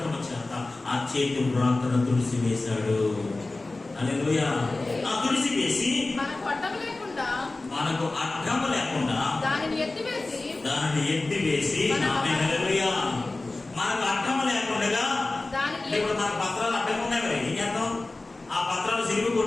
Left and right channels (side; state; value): right; quieter; 3.1 dB